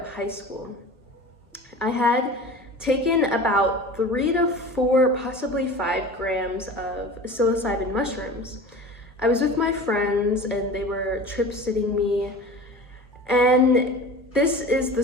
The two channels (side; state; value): both; normal; correlation 0.37